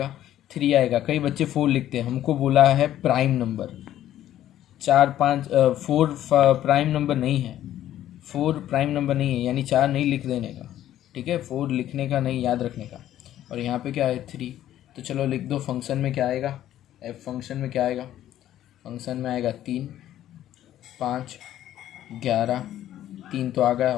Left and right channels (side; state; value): right; quieter; 12.4 dB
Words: 3 आएगा। कई बच्चे 4 लिखते हैं, हमको बोला है प्राइम नंबर, 4 5 4 प्राइम नंबर नहीं है, 4 प्राइम नंबर नहीं है, यानी 4 नहीं लिख देने का। ठीक है, 4 लिखने का नहीं, याद रखने का। और यहाँ पे क्या है 3, तो चलो लिख दो फंक्शन में क्या आएगा, एफ फंक्शन में क्या आएगा, फंक्शन में आएगा 3 5 11, 3 तो आ गया